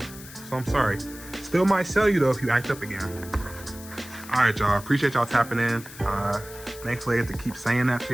So I'm sorry. Still might sell you though if you act up again. Alright, y'all. Appreciate y'all tapping in. Thankfully I get to keep saying that to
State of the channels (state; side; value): noise; left; hiss, 16 dB below the sound